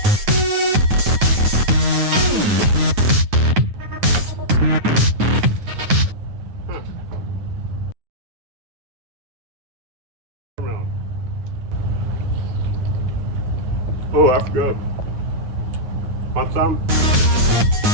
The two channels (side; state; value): left; late; 9.4 ms